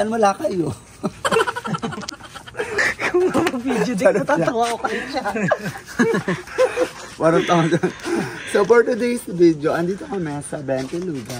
wala kayo. Kung mag-video din, natatawa ko kayo siya. Warang tao dyan. So for today's video, andito kami sa 20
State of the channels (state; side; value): identical; both; correlation 1.00